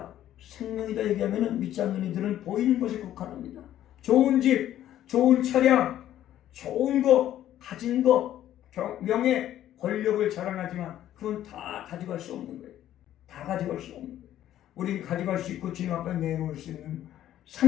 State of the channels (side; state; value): right; quieter; 12.2 dB